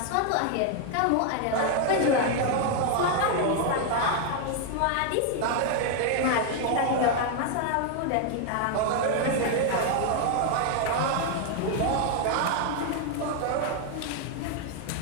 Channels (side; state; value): both; different; correlation 0.00